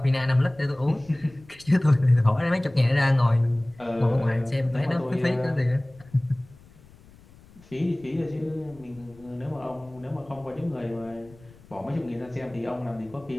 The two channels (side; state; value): left; noise; rumble, 25 dB below the sound